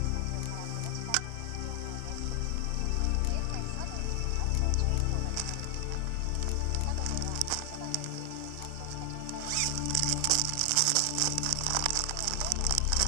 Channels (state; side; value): different; both; correlation 0.00